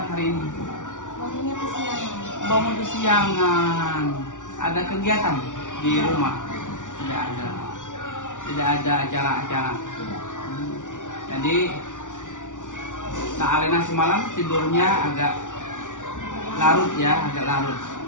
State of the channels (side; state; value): right; late; 0.87 ms